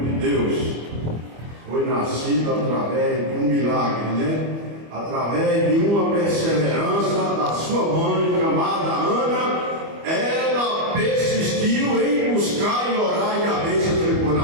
de Deus, foi nascido através de um milagre, né? Através de uma perseverança da sua mãe, chamada Ana. Ela persistiu em buscar e orar, e a bênção ficou na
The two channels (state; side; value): late; left; 25 ms